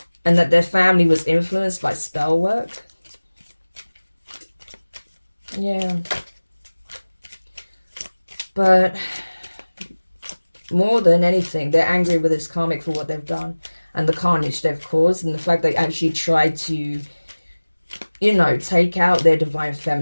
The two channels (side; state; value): both; inverted; correlation -1.00